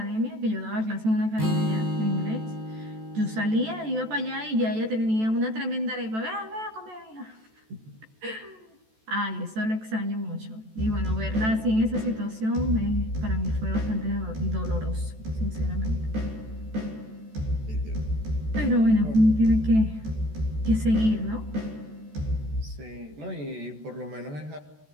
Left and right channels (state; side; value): late; left; 14 ms